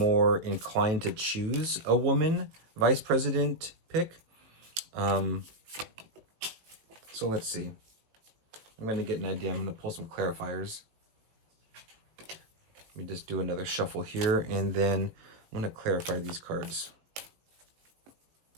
inclined to choose a woman vice president pick. So let's see. I'm going to get an idea. I'm going to pull some clarifiers. Let me just do another shuffle here, and then I'm going to clarify these cards.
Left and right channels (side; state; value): left; late; 18 ms